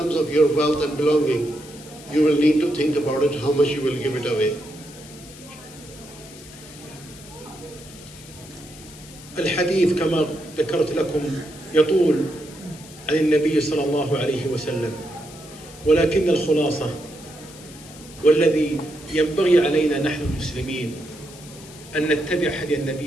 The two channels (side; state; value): left; noise; hiss, 19 dB below the sound